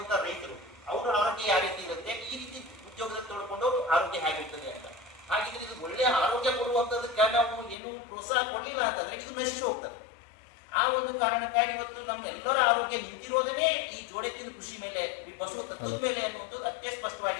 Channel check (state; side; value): drops out; right; at 7.8 s